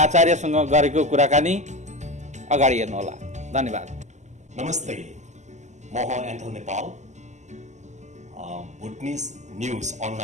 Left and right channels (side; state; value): left; late; 0.34 ms